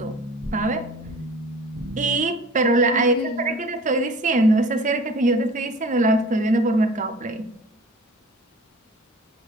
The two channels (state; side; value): normal; both; correlation 0.44